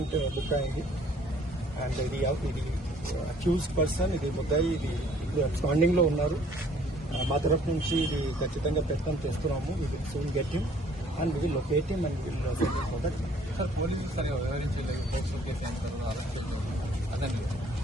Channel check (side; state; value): both; normal; correlation 0.59